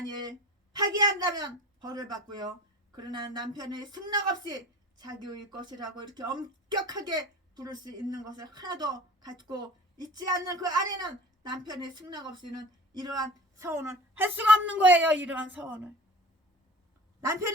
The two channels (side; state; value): both; normal; correlation 0.39